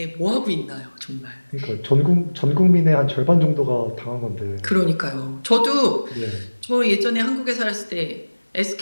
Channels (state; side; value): inverted; both; correlation -1.00